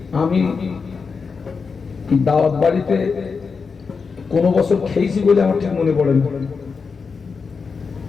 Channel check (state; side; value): quieter; right; 5.1 dB